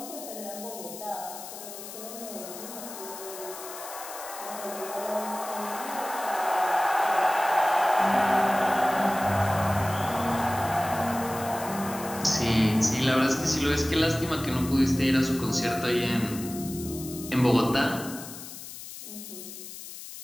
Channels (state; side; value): noise; left; hiss, 12 dB below the sound